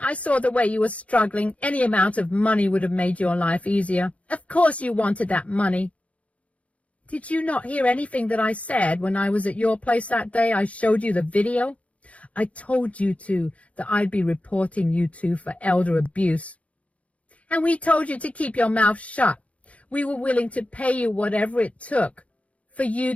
I saw the way you were struggling. Any amount of money would have made your life easier. Of course you wanted that money. Did you not hear anything that I said when I was at your place that day I showed you the video? I told you that I'd be reporting you two for elder abuse. And we told you to keep your mouth shut. We were willing to pay you whatever it took for you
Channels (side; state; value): right; late; 0.065 ms